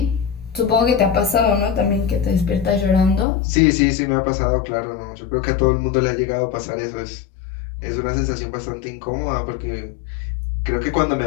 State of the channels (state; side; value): drops out; right; at 3.2 s